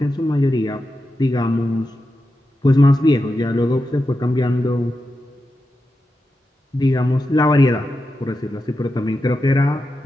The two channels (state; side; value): normal; both; correlation 0.89